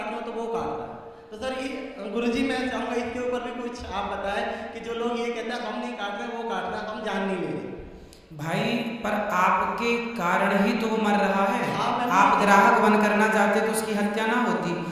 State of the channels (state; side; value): identical; both; correlation 1.00